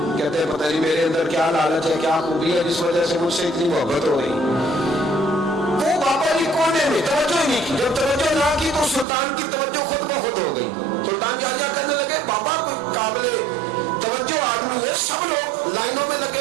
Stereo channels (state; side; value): drops out; left; at 9.1 s